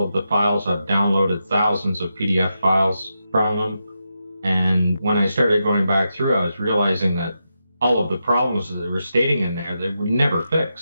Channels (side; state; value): both; inverted; correlation -0.87